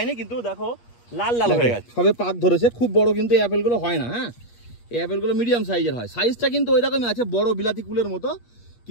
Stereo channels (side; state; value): right; late; 8.4 ms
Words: কিন্তু দেখো লাল লাল হয়ে গেছে, সবে পাক ধরেছে। খুব বড় কিন্তু এই অ্যাপেলগুলো হয় না। হ্যাঁ, এই অ্যাপেলগুলো মিডিয়াম সাইজের হয়, সাইজটা কিন্তু ওই রকমই আছে, বড় বিলাতি কুলের মতো,